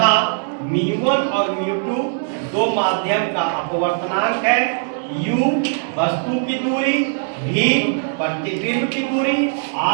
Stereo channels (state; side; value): silent; left; 66 dB below the other